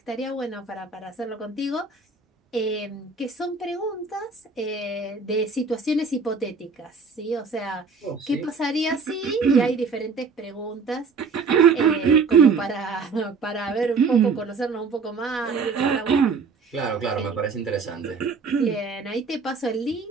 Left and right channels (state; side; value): quieter; left; 4.8 dB